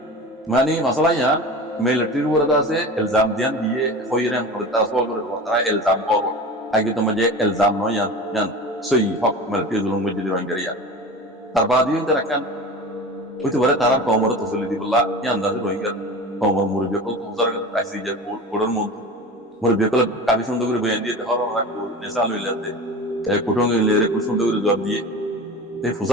মানে মাসালা ইয়ান মিলিটারির ওরা আছে ইলজাম দিয়ান দিয়ে হইরেন করে তাসওয়াল করে তারা ইলজাম করব আগে তো মাঝে ইলজাম নয় ইয়ান সই হক মিলিটারি জুলুম মজদি রোহিঙ্গারিয়া তার বাদিও তারা কান হইতে পারে তারা কমর তসলি দিবল্লা এই আন্দাজে রোহিঙ্গা কমর মুরব্বী কল তুজার আইসি যে কোডর মধ্যে মুরব্বী কল কাবি সুন্দর করে বয়ান দিয়ে হর হর নেশা লইলাতে কুটুং লেরে খুব সুন্দর করে জবাব দিয়ে এই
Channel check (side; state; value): both; normal; correlation 0.33